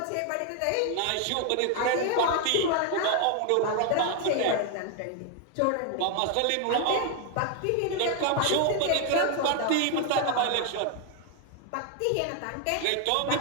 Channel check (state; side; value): different; both; correlation 0.01